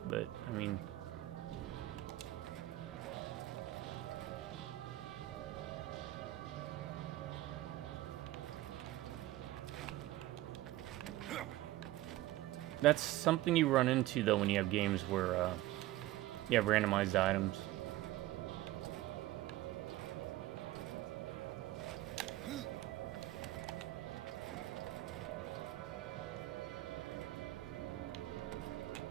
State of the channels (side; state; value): left; quieter; 16.1 dB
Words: but I mean, that's something you run into though when you have games where you have randomized items.